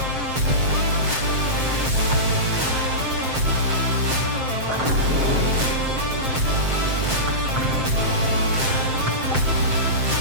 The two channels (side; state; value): left; late; 7.7 ms